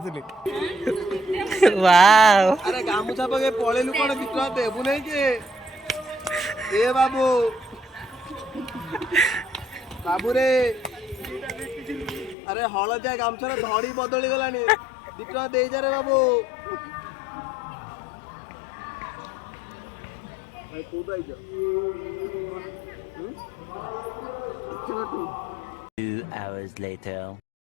थिली वाओ अरे गामुछा पके पळेलु कोन बिट्रा देबु नै के ए बाबू बाबू रे अरे हळदिया गामछार धड़ी बदली गलानी बिट्रा देई जा रे बाबू भाई तू तो आइजा 2 hours later.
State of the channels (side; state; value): right; drops out; at 12.4 s